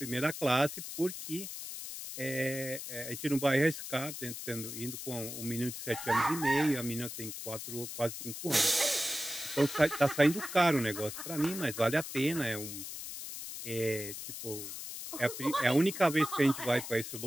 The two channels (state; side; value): noise; left; hiss, 8 dB below the sound